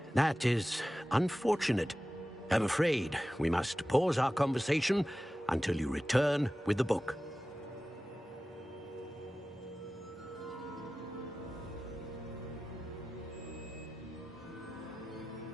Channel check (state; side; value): normal; both; correlation 0.95